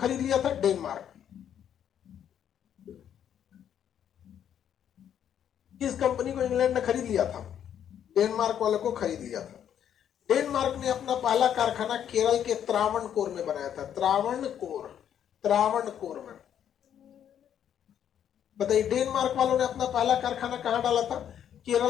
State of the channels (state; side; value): quieter; right; 9.5 dB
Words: लिया था, डेनमार्क। किस कंपनी को इंग्लैंड ने खरीद लिया था, डेनमार्क वाले को खरीद लिया था। डेनमार्क ने अपना पहला कारखाना केरल के त्रावणकोर में बनाया था, त्रावणकोर, त्रावणकोर में। बताइए डेनमार्क वालों ने अपना पहला कारखाना कहां डाला था,